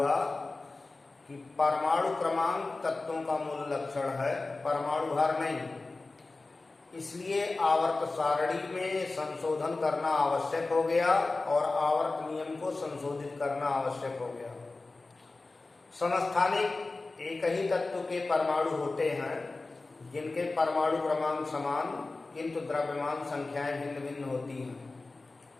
कि परमाणु क्रमांक तत्वों का मूल लक्षण है, परमाणु भार नहीं। इसलिए आवर्त सारणी में संशोधन करना आवश्यक हो गया और आवर्त नियम को संशोधित करना आवश्यक हो गया। समस्थानिक एक ही तत्व के परमाणु होते हैं जिनके परमाणु क्रमांक समान किंतु द्रव्यमान संख्याएं भिन्न भिन्न होती हैं।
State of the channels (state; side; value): quieter; right; 3.4 dB